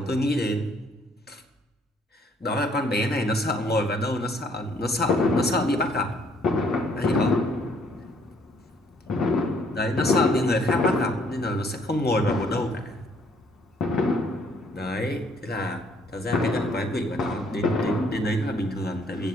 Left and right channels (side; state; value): both; normal; correlation 0.65